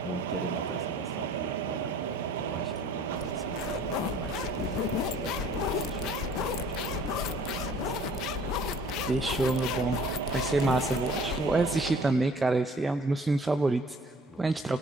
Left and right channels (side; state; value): both; normal; correlation 0.53